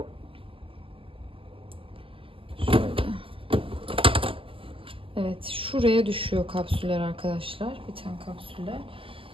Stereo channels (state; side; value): late; left; 0.26 ms